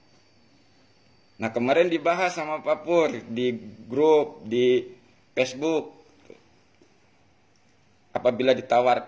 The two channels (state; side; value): identical; both; correlation 1.00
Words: Nah kemarin dibahas sama Pak Pur di grup, di Facebook. Apabila